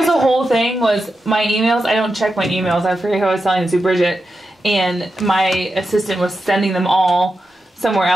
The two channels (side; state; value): both; normal; correlation 0.89